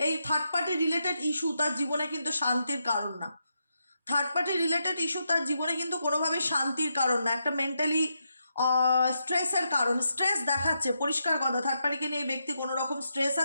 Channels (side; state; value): both; inverted; correlation -0.83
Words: এই থার্ড পার্টি রিলেটেড ইস্যু তার জীবনে কিন্তু শান্তির কারণ না। থার্ড পার্টি রিলেটেড ইস্যু তার জীবনে কিন্তু কোনোভাবেই শান্তির কারণ না, একটা মেন্টালি স্ট্রেসের কারণ। স্ট্রেস দেখাচ্ছে, পরিষ্কার কথা, থার্ড পার্টিকে নিয়ে এই ব্যক্তি কোনো রকম স্ট্রেস